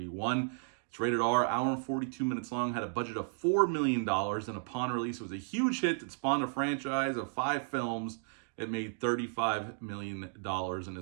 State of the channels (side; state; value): left; silent; digital silence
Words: It's rated R, hour and 42 minutes long, had a budget of $4 million, and upon release, it was a huge hit that spawned a franchise of 5 films. It made $35 million, and